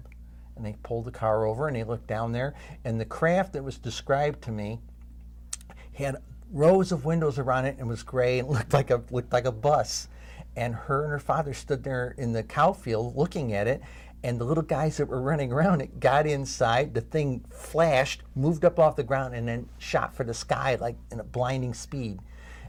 And they pulled the car over, and they looked down there, and the craft that was described to me had rows of windows around it and was gray and looked like a bus. And her father stood there in the cow field looking at it, And the little guys that were running around it got inside, the thing flashed, moved up off the ground, and then shot for the sky like in a blinding speed.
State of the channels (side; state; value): both; identical; correlation 1.00